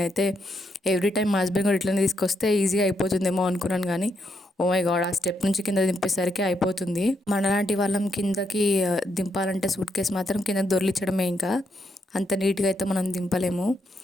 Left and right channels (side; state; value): both; normal; correlation 0.79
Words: అయితే ఎవ్రీ టైం మా హస్బెండ్ కూడా ఇట్లనే తీసుకొస్తే ఈజీగా అయిపోతుందేమో అనుకున్నాను, కానీ ఓ మై గాడ్, ఆ స్టెప్ నుంచి కింద దింపేసరికి అయిపోతుంది. మనలాంటి వాళ్ళం కిందకి దింపాలంటే సూట్ కేసు మాత్రం కింద దొర్లించడమే, ఇంకా అంత నీట్గా అయితే మనం దింపలేము.